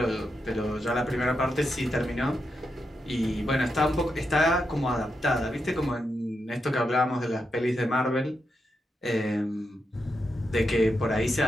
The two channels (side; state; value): both; normal; correlation 0.85